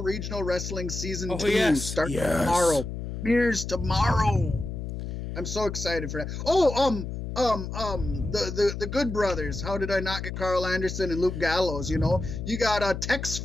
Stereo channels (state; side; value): noise; left; hum, 6 dB below the sound